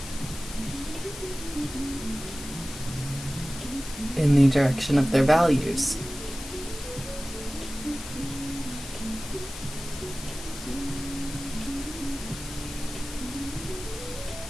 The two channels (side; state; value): left; noise; hiss, 12 dB below the sound